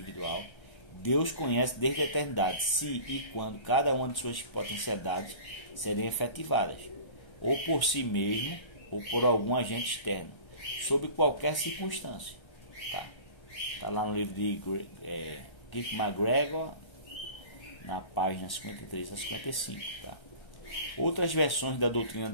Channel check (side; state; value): right; late; 1.3 ms